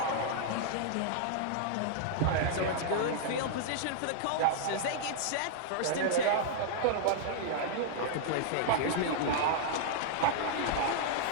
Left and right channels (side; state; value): both; different; correlation -0.01